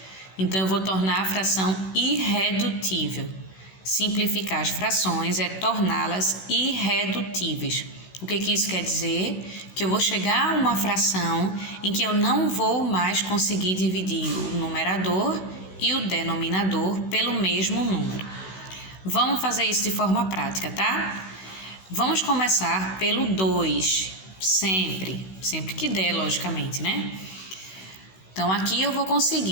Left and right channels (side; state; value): right; late; 16 ms